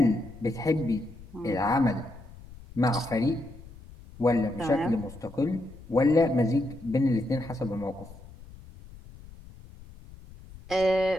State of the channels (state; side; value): noise; left; rumble, 18 dB below the sound